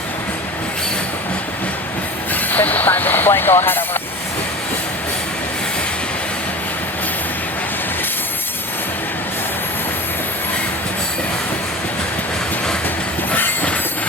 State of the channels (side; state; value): both; normal; correlation 0.34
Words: Time display, go ahead, over.